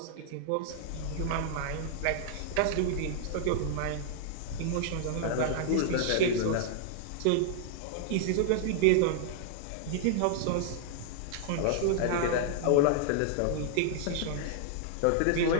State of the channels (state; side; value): different; both; correlation -0.01